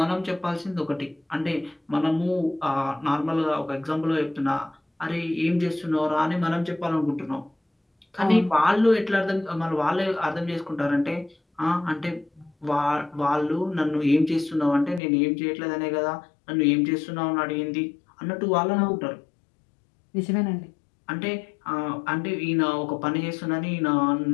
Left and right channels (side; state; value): right; drops out; at 15.0 s